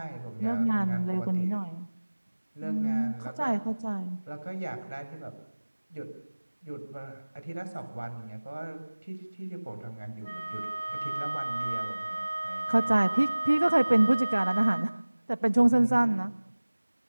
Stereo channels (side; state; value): both; inverted; correlation -1.00